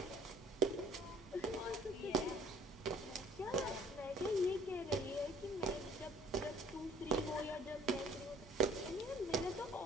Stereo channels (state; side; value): normal; both; correlation 0.55